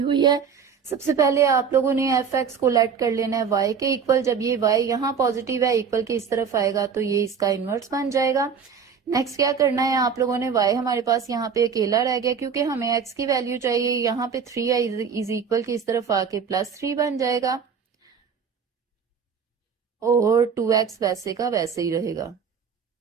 है। सबसे पहले आप लोगों ने एफ एक्स को लेट कर लेना है y के इक्वल। जब ये y यहाँ पॉजिटिव है, इक्वल के इस तरफ आएगा तो ये इसका इनवर्स बन जाएगा। नेक्स्ट क्या करना है आप लोगों ने, y हमारे पास यहाँ पे अकेला रह गया क्योंकि हमें x की वैल्यू चाहिए। यहाँ पे 3 है, इज इक्वल की इस तरफ आके +3 बन जाएगा और 2x वैसे का वैसे ही रहेगा।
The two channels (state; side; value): quieter; left; 6.4 dB